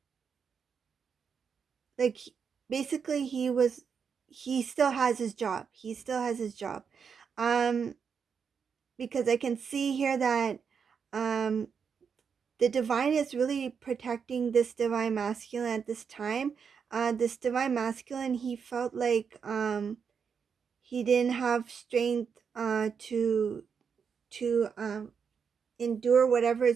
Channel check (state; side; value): quieter; left; 6.4 dB